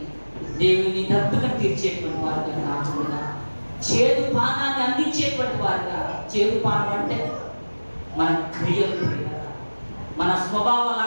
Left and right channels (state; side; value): inverted; both; correlation -1.00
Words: దేవుని దప్పుకను తీర్చేటువంటి వారుగా కాకుండా చేదు పానాన్ని అందించేటువంటి వారుగా. చేదు పానం అంటే మన క్రియలు, మన స్వభావ